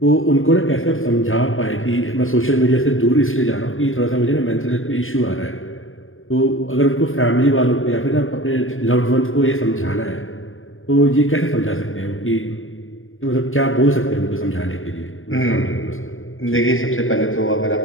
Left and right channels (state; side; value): late; right; 0.59 ms